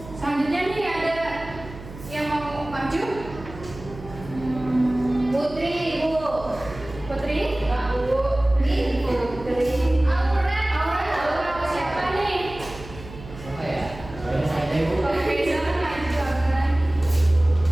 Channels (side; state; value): right; noise; hum, 15 dB below the sound